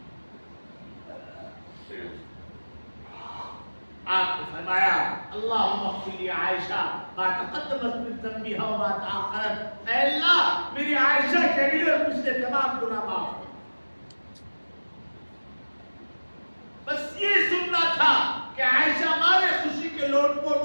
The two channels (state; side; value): inverted; both; correlation -1.00